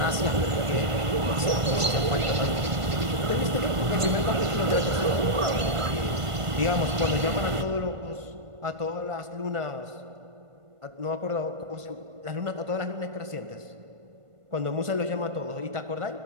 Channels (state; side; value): late; left; 1.5 ms